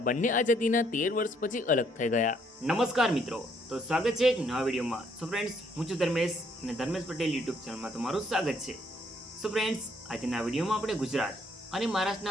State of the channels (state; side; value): normal; both; correlation 0.68